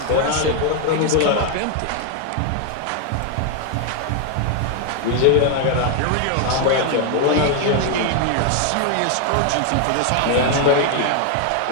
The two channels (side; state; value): both; different; correlation 0.01